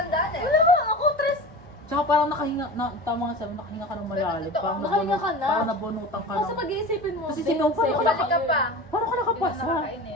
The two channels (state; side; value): normal; both; correlation 0.33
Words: eh. Wala ba? Ako, tres. Tsaka parang nakahinga, tama nga sabi, nakahinga ka ng malalim. Pero Parang nakahinga ka na. Parang nabunutan ka Kasi ng... pag-iisipin mo. Kasi then, sinong paano second ka Balik ka year. pa. Paano ka nakapasa? Hindi na